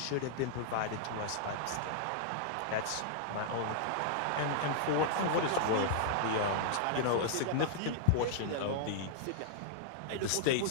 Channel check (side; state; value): both; different; correlation -0.01